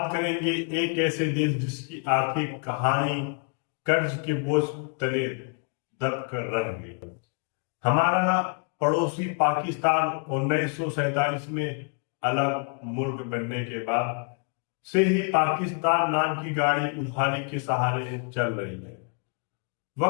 करेंगे एक ऐसे देश जिसकी आर्थिक कहानी कर्ज के बोझ तले दब कर रह गई। हमारा पड़ोसी पाकिस्तान 1947 में अलग मुल्क बनने के बाद से ही पाकिस्तान नाम की गाड़ी उधारी के सहारे चल रही है।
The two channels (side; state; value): right; quieter; 39.4 dB